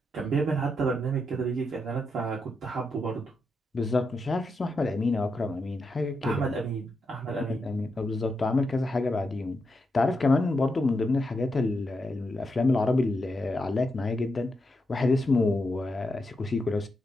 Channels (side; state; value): both; normal; correlation 0.84